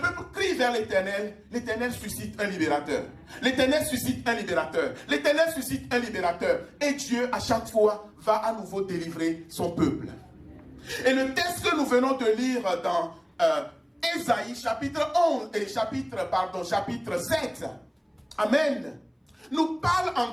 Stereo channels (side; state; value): both; identical; correlation 1.00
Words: crie vers l'Éternel, l'Éternel suscite un libérateur. L'Éternel suscite un libérateur. L'Éternel suscite un libérateur. Et Dieu, à chaque fois, va à nouveau délivrer son peuple. Et le texte que nous venons de lire dans Ésaïe, chapitre 11, et chapitre 7, amen, nous parle